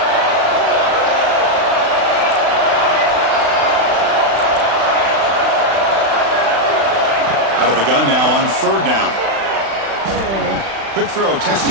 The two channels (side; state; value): left; late; 36 ms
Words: Out of the gun now on 3rd down. Quick throw,